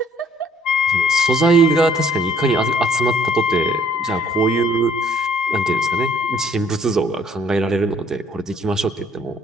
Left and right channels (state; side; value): normal; both; correlation 0.60